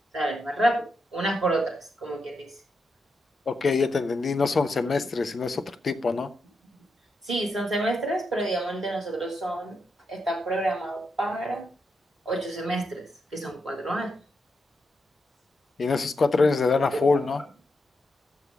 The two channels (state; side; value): normal; both; correlation 0.84